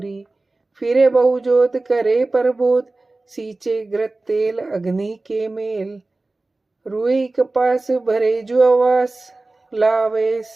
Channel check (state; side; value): quieter; left; 3.2 dB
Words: फिरे बहुजोत करे परबोध, सींचे घृत तेल अग्नि के मेल। रुई कपास भरे जो आवास, लावे